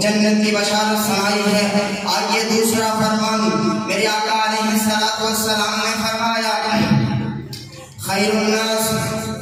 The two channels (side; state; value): both; identical; correlation 1.00